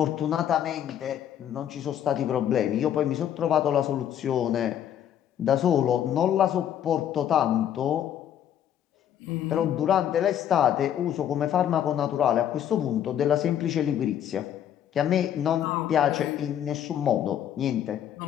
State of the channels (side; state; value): right; quieter; 10.2 dB